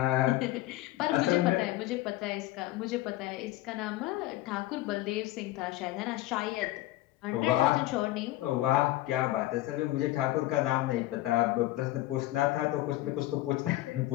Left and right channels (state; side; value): quieter; right; 16.6 dB